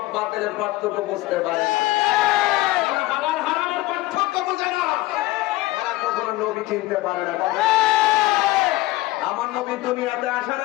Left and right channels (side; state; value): right; quieter; 18.4 dB